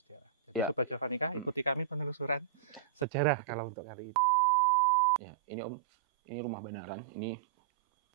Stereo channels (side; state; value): left; drops out; at 3.1 s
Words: Ya. Sobat Javanika, ikuti kami penelusuran sejarah kalau untuk hari ini. Ya, ini Om, ini rumah Banaran, ini